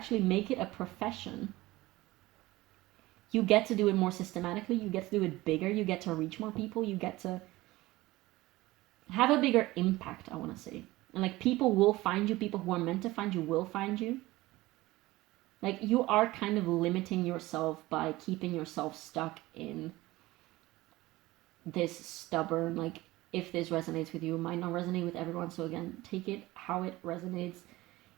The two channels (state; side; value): quieter; left; 18.8 dB